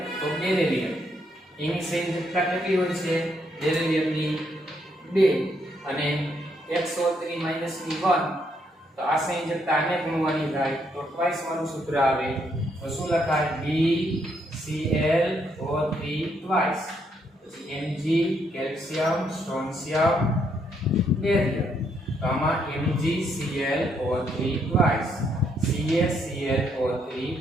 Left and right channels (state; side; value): normal; both; correlation 0.74